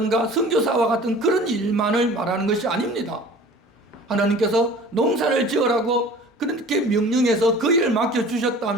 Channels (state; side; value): normal; both; correlation 0.44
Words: 선교사와 같은 그런 일만을 말하는 것이 아닙니다. 하나님께서 농사를 지으라고 그렇게 명령해서 그 일을